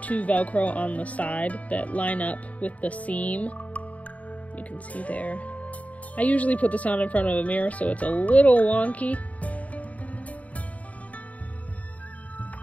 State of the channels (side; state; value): right; late; 0.069 ms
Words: Velcro on the side that line up with the seam. You can see there. I usually put this on in front of a mirror, so it's a little wonky.